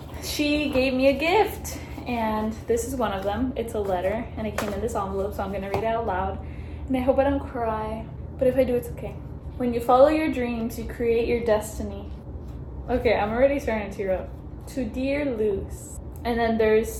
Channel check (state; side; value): identical; both; correlation 1.00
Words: she gave me a gift, and this is one of them. It's a letter, and it came in this envelope, so I'm gonna read it out loud, and I hope I don't cry, but if I do, it's okay. When you follow your dreams, you create your destiny. Okay, I'm already starting to tear up. To dear Luz. And then